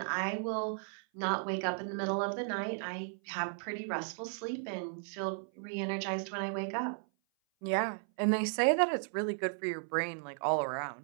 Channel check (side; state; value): left; silent; 54 dB below the other